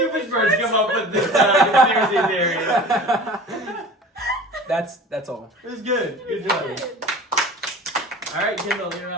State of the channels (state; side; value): normal; both; correlation 0.40